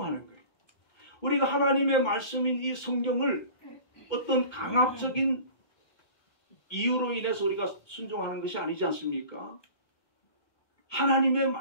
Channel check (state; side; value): late; right; 2.2 ms